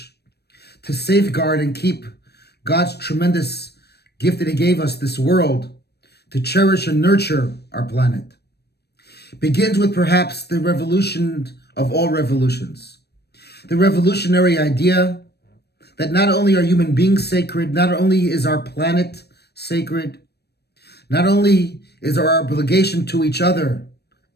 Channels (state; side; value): late; right; 0.47 ms